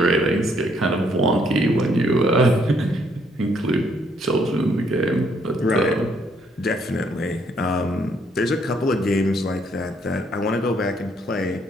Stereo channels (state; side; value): normal; both; correlation 0.69